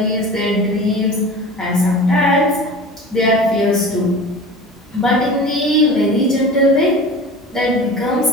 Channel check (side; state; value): both; normal; correlation 0.36